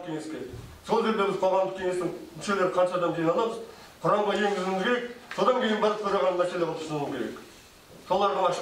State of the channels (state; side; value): identical; both; correlation 1.00